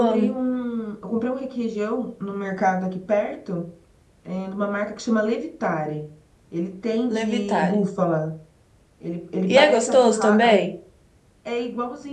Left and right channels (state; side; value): identical; both; correlation 1.00